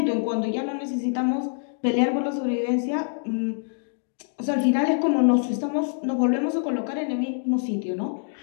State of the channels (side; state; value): right; silent; 62 dB below the other